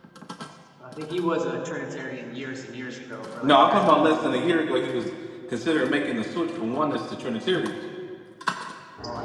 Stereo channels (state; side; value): identical; both; correlation 1.00